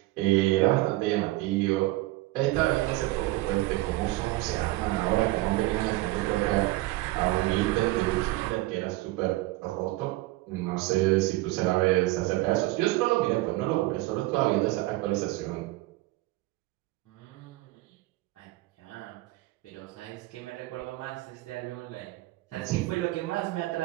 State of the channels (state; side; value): quieter; left; 19.1 dB